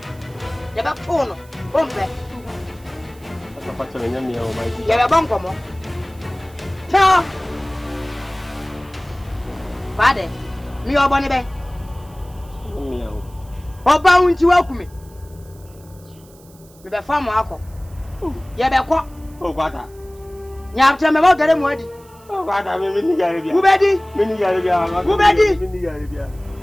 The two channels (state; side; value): noise; right; hiss, 27 dB below the sound